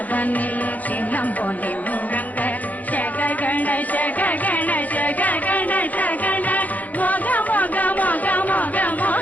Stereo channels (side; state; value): right; late; 0.078 ms